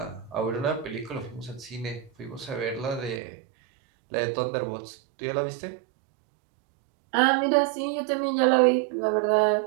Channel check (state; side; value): drops out; left; at 3.2 s